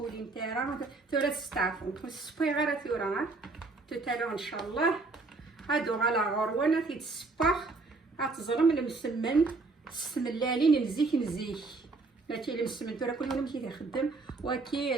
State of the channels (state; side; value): quieter; left; 3.7 dB